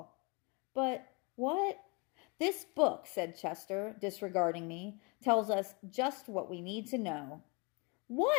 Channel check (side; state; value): right; quieter; 30.6 dB